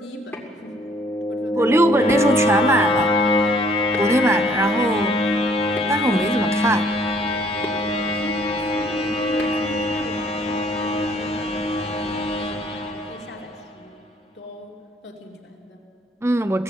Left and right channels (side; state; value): both; normal; correlation 0.62